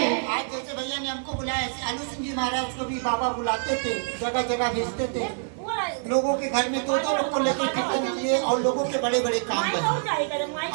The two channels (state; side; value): silent; left; 61 dB below the other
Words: आज जैसे भैया ने हमको बुलाया, ऐसे आलू सिंह जी महाराज को भी बाबा बुलाते थे, जगह जगह भेजते थे, लोगों के घर में 2-2 लोग को लेकर कीर्तन किए और लोगों के बड़े बड़े काम करे।